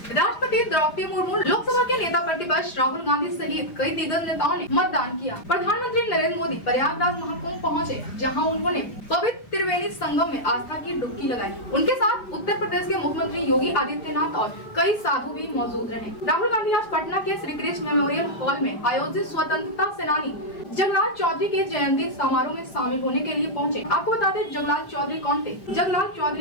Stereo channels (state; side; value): late; right; 5.0 ms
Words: राष्ट्रपति द्रौपदी मुर्मू, लोकसभा के नेता प्रतिपक्ष राहुल गांधी सहित कई दिग्गज नेताओं ने मतदान किया। प्रधानमंत्री नरेंद्र मोदी प्रयागराज महाकुंभ पहुंचे, जहां उन्होंने पवित्र त्रिवेणी संगम में आस्था की डुबकी लगाई। उनके साथ उत्तर प्रदेश के मुख्यमंत्री योगी आदित्यनाथ और कई साधु भी मौजूद रहे। राहुल गांधी आज पटना के श्री कृष्ण मेमोरियल हॉल में आयोजित स्वतंत्रता सेनानी जगलाल चौधरी के जयंती समारोह में शामिल होने के लिए पहुंचे। आपको बता दें, जगलाल चौधरी कौन थे? जगलाल